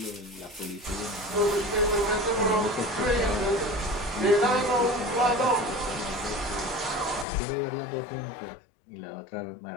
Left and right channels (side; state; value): right; drops out; at 7.2 s